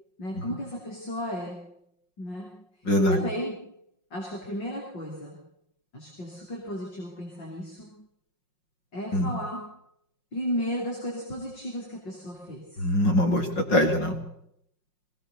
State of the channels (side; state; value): right; late; 5.5 ms